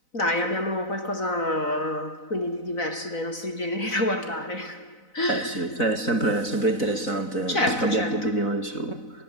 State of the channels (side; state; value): right; late; 4.0 ms